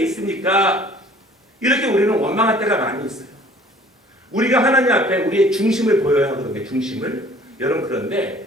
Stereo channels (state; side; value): normal; both; correlation 0.52